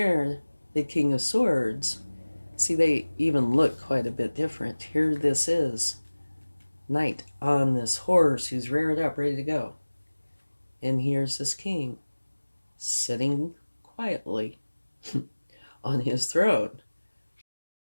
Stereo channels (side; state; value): both; inverted; correlation -1.00